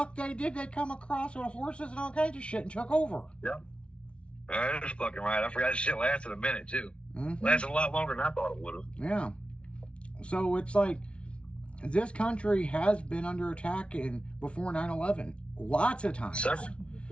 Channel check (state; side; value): late; right; 0.059 ms